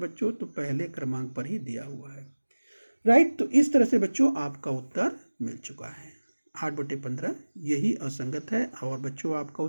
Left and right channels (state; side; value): inverted; both; correlation -1.00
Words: तो पहले क्रमांक पर ही दिया हुआ है, राइट। तो इस तरह से बच्चों आपका उत्तर मिल चुका है, 8/15 यही असंगत है। और बच्चों आपका